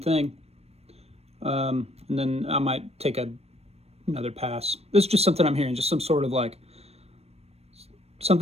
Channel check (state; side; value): late; left; 0.30 ms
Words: And then I might take another pass. This is just something I'm hearing, just some sort of like,